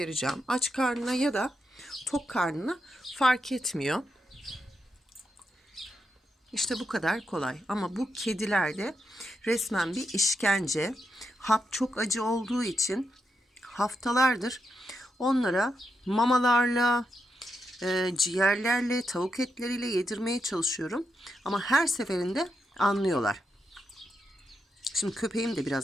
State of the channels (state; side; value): normal; both; correlation 0.84